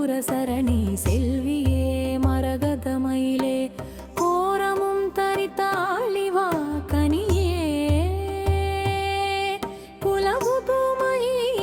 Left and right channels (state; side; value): identical; both; correlation 1.00